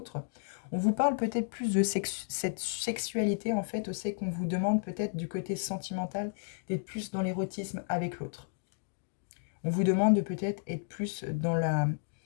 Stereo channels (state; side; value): silent; right; digital silence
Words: On vous parle peut-être plus de cette sexualité, en fait, c'est qu'on vous demande peut-être du côté sentimental d'être plus dans l'érotisme avec l'autre. On vous demande de peut-être être plus dans